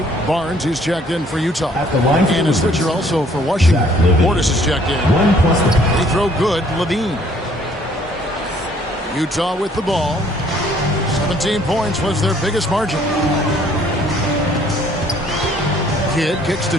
Barnes is checked in for Utah. And a switcher also for Washington. Portis is checked in. Free throw good, Levine. Utah with the ball. 17 points was their biggest margin. Kidd kicks to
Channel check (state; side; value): normal; both; correlation 0.61